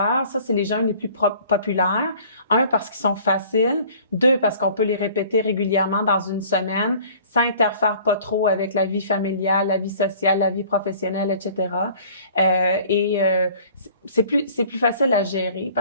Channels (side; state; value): both; inverted; correlation -0.51